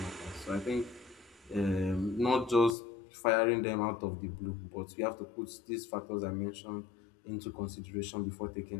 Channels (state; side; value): drops out; right; at 2.8 s